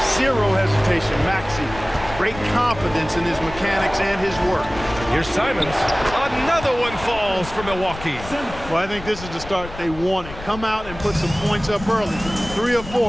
Zero hesitation, Maxey. Great confidence in his mechanics and his work. Here's Simons. Another one falls for Milwaukee. Well, I think this is the start they wanted. Come out and put some points up early. 3 or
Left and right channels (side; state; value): left; noise; rumble, 13 dB below the sound